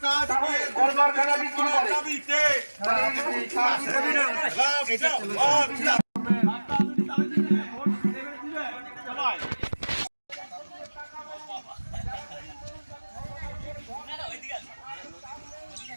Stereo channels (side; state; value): both; inverted; correlation -1.00